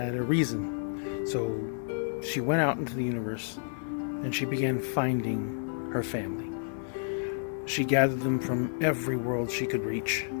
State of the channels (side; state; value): right; silent; digital silence